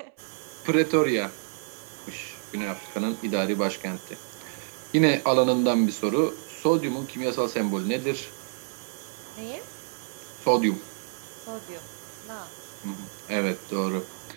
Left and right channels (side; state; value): left; silent; 59 dB below the other